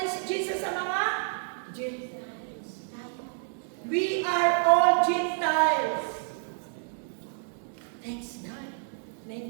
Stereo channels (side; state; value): left; silent; 58 dB below the other